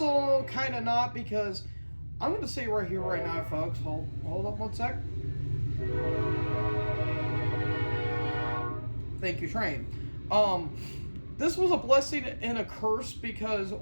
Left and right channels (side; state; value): both; inverted; correlation -1.00